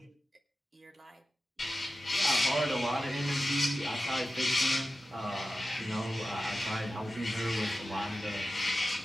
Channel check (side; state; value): both; normal; correlation 0.93